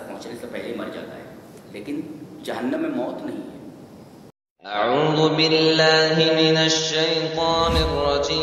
پہنچنے سے پہلے مر جاتا ہے، لیکن جہنم میں موت نہیں ہے. اعوذ باللہ من الشیطان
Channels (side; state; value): both; identical; correlation 1.00